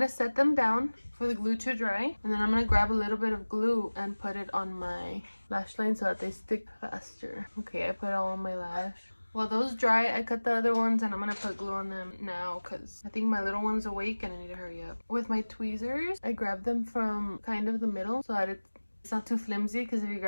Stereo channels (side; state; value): both; inverted; correlation -1.00